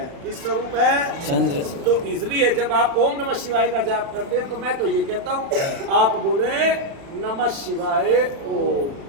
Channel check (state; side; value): late; left; 36 ms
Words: किस स्वरूप है? चंद्र। तो इसलिए जब आप ओम नमः शिवाय का जाप करते हैं तो मैं तो ये कहता हूँ आप बोले नमः शिवाय ओम,